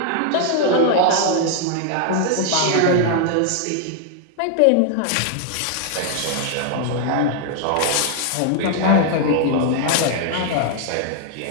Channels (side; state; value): both; different; correlation 0.00